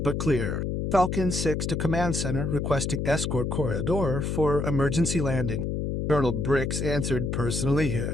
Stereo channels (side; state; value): left; noise; hum, 1 dB below the sound